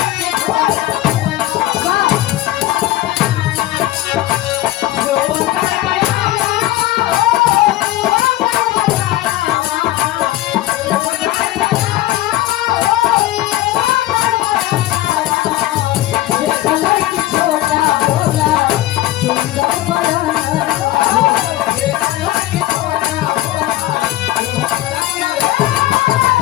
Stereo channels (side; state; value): right; quieter; 15.5 dB